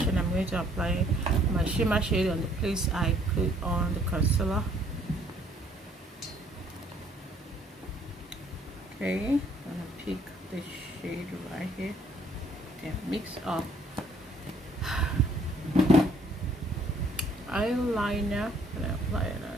and I'm going to apply my shimmer shade on the place I put on the concealer. Okay, I'm gonna pick the shade right here and mix up eyeliner and apply an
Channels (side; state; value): both; normal; correlation 0.62